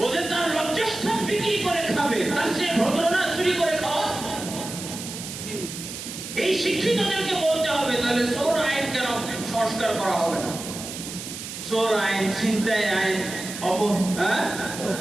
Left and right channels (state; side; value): noise; right; hiss, 9 dB below the sound